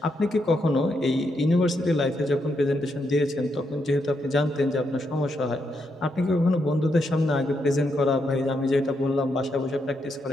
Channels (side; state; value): both; normal; correlation 0.80